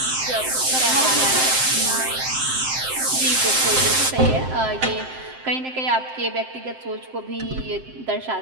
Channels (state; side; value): late; left; 7.7 ms